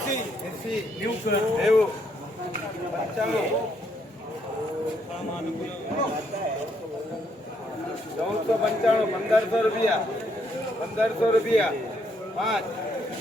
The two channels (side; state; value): both; normal; correlation 0.73